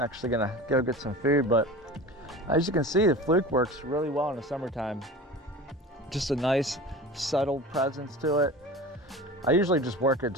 actually gonna go get some food, but as you can see, the Fluke works really well in the summertime. Just a nice subtle presence to it. I usually just work it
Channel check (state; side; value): normal; both; correlation 0.35